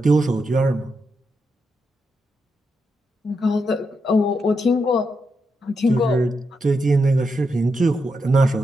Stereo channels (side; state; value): both; normal; correlation 0.84